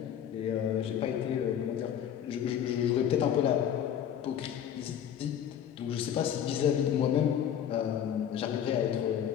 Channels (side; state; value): right; quieter; 9.4 dB